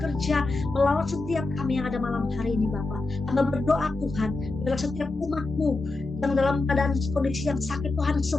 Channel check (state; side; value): quieter; right; 3.3 dB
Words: melalui setiap kami yang ada malam hari ini Bapa. Kami berdoa Tuhan, dalam setiap umat-Mu yang dalam keadaan kondisi yang sakit Tuhan